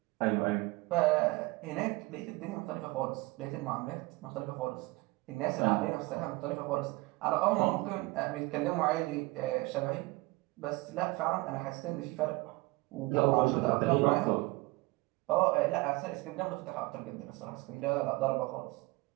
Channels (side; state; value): left; quieter; 23.0 dB